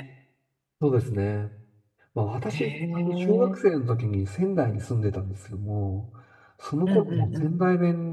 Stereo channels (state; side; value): identical; both; correlation 1.00